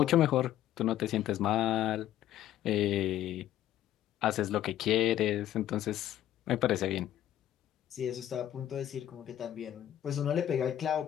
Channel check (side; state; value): right; quieter; 12.2 dB